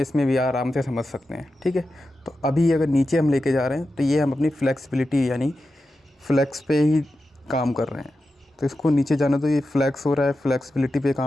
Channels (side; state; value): both; normal; correlation 0.91